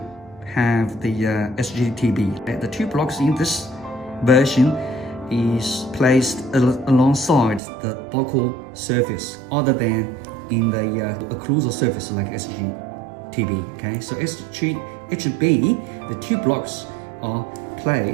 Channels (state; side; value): drops out; left; at 7.6 s